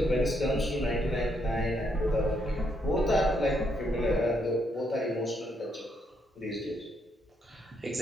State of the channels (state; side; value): normal; both; correlation 0.76